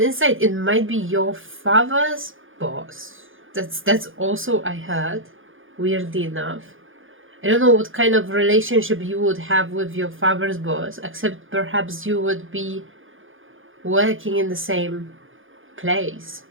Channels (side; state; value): left; late; 0.58 ms